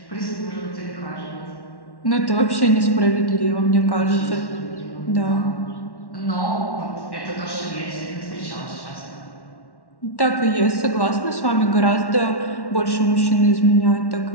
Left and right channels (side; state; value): right; late; 1.1 ms